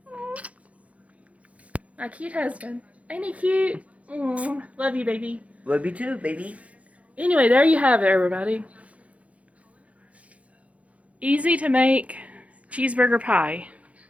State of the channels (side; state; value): left; late; 0.066 ms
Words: My cute husband. Ain't he cute? Mm. Love you, baby. Love you too, baby. Anyway, there you have it, everybody. Easy to make cheeseburger pie.